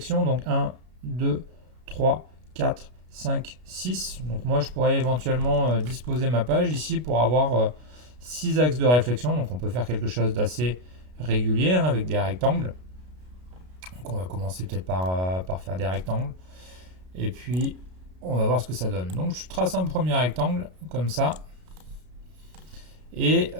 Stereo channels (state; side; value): late; left; 33 ms